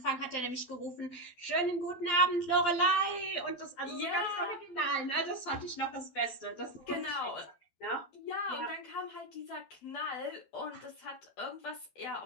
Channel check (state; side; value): late; right; 12 ms